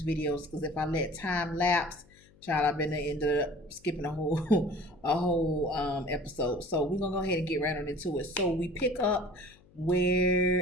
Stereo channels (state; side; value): noise; left; hum, 28 dB below the sound